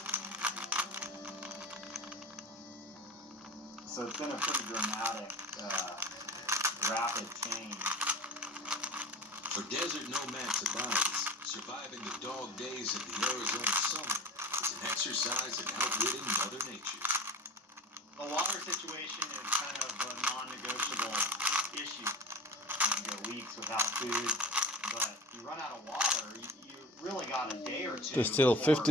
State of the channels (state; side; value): normal; both; correlation 0.34